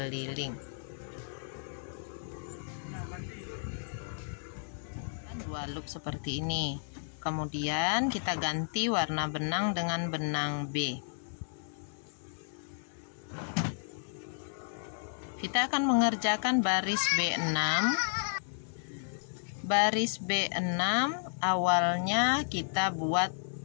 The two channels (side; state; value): right; silent; 56 dB below the other